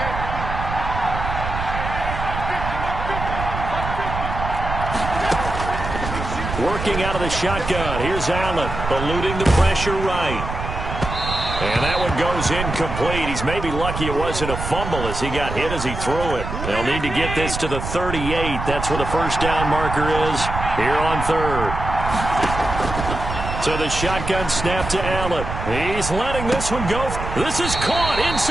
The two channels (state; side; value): noise; right; rumble, 5 dB below the sound